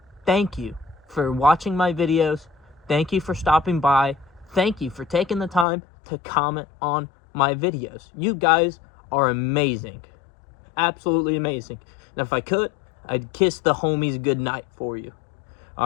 thank you for watching my videos. Thank you for stopping by. Thank you for taking the time to comment on my videos. You guys are amazing. Absolutely amazing. And if I could, I'd kiss the homies goodnight for you.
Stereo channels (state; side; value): drops out; right; at 5.7 s